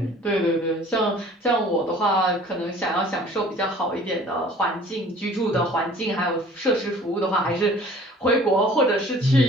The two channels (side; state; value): both; normal; correlation 0.50